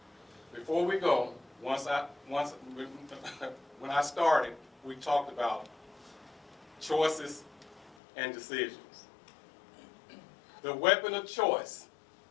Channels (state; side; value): drops out; right; at 8.0 s